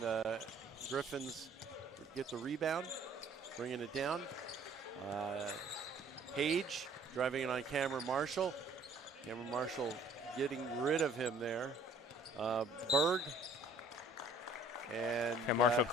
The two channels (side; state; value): both; normal; correlation 0.56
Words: Griffins get the rebound, bringing it down. Page driving it on Cameron Marshall. Cameron Marshall getting rid of him there. Berg. And Marshall